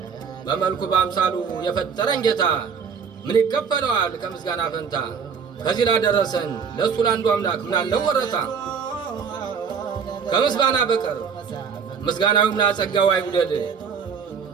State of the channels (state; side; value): quieter; left; 6.4 dB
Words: በመልኩ በአምሳሉ የፈጠረን ጌታ ምን ይከፈለዋል ከምስጋና ፈንታ ከዚህ ላደረሰን ለእሱ ለአንዱ አምላክ ምን አለው ወረታ ከምስጋና በቀር ምስጋናውም ላጸጋው አይጉደል።